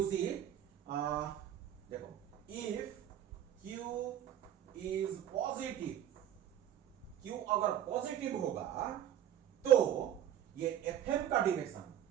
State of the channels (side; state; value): left; quieter; 10.9 dB